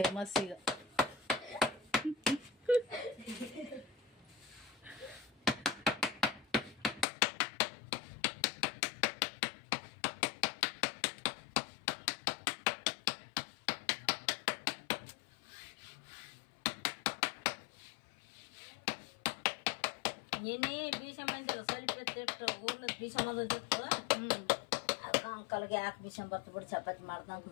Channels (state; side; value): drops out; right; at 7.1 s